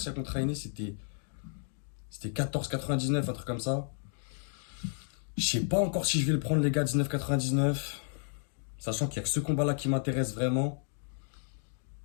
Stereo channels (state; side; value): silent; right; 56 dB below the other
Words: contre Ainé, c'était 14,99, un truc comme ça. Je sais pas encore si je vais le prendre, les gars, 19,99. Sachant qu'il y a que ce combat-là qui m'intéresse vraiment.